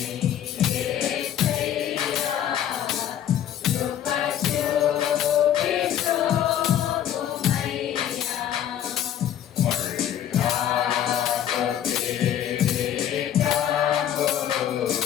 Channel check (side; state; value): right; quieter; 10.5 dB